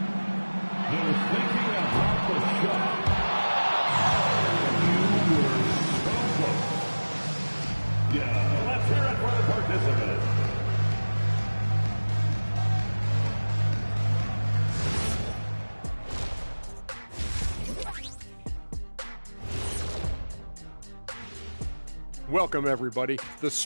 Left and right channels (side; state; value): both; inverted; correlation -1.00